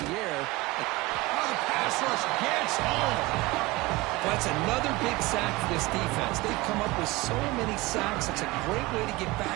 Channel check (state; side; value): quieter; left; 21.1 dB